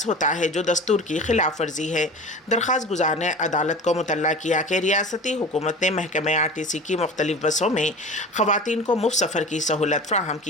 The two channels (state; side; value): normal; both; correlation 0.35